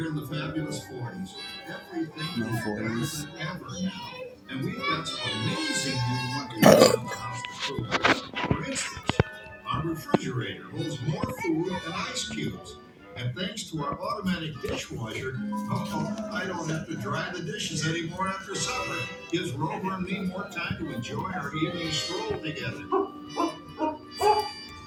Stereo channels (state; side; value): identical; both; correlation 1.00